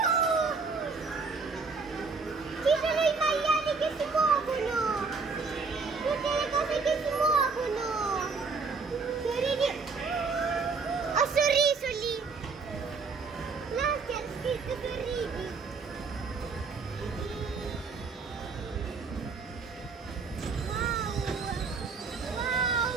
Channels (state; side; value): quieter; left; 4.6 dB